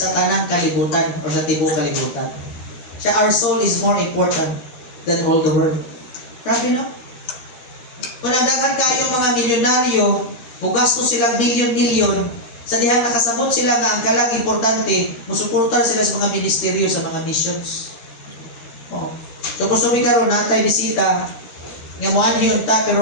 tanang kalibutan o sa tibok kalibutan. Siya, our soul is more important than all the world. Grabe no? Kung nagdagan kayong mga milyonaryo, bugastos silang milyon-milyon, sa dihang nakasabot sila nga ang kalag importante, musuportar sila sa mga ministeryo, sa mga missions. Oh. So gusto mi karon natay bisita nga moan yun ta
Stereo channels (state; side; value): late; right; 13 ms